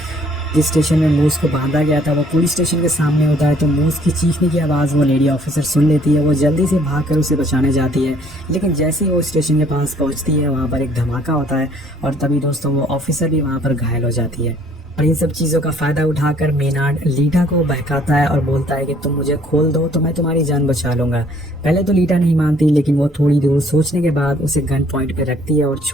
जिस स्टेशन में मूस को बांधा गया था वो पुलिस स्टेशन के सामने होता है। तो मूस की चीखने की आवाज़ वो लेडी ऑफिसर सुन लेती है। वो जल्दी से भागकर उसे बचाने जाती है, लेकिन जैसे ही वो स्टेशन के पास पहुंचती है वहाँ पर एक धमाका होता है और तभी दोस्तों वो ऑफिसर भी वहाँ पर घायल हो जाती है। और इन सब चीज़ों का फ़ायदा उठाकर मेनार्ड लीटा को बहकाता है और बोलता है कि तुम मुझे खोल दो तो मैं तुम्हारी जान बचा लूँगा। पहले तो लीटा नहीं मानती, लेकिन वो थोड़ी दूर सोचने के बाद उसे गन पॉइंट पे रखती है और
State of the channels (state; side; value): normal; both; correlation 0.60